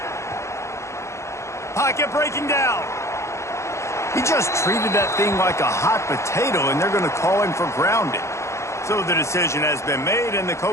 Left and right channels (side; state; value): right; late; 0.14 ms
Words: Pocket breaking down. He just treated that thing like a hot potato, and they're going to call him for grounding. So the decision has been made, and the